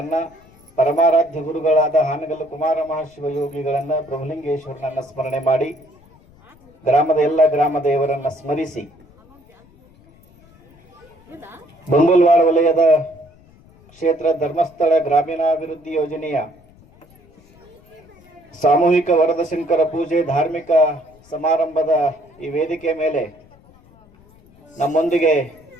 ಪರಮಾರಾಧ್ಯ ಗುರುಗಳಾದ ಹಾನಗಲ್ಲು ಕುಮಾರ ಮಹಾಶಿವಯೋಗಿಗಳನ್ನ, ಪ್ರಭುಲಿಂಗೇಶ್ವರನನ್ನ ಸ್ಮರಣೆ ಮಾಡಿ, ಗ್ರಾಮದ ಎಲ್ಲ ಗ್ರಾಮ ದೇವರನ್ನ ಸ್ಮರಿಸಿ, ಬಂಬಲ್ವಾಡ ವಲಯದ ಕ್ಷೇತ್ರ ಧರ್ಮಸ್ಥಳ ಗ್ರಾಮೀಣಾಭಿವೃದ್ಧಿ ಯೋಜನೆಯ ಸಾಮೂಹಿಕ ವರದಶಂಕರ ಪೂಜೆ ಧಾರ್ಮಿಕ ಸಮಾರಂಭದ ಈ ವೇದಿಕೆ ಮೇಲೆ ನಮ್ಮೊಂದಿಗೆ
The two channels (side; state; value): left; noise; rumble, 28 dB below the sound